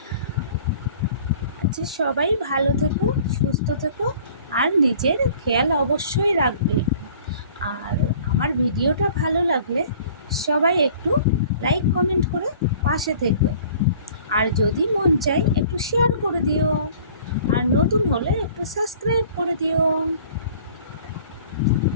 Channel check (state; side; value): inverted; both; correlation -0.50